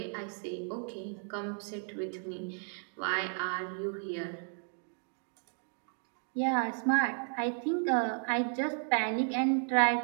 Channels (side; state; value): left; silent; 55 dB below the other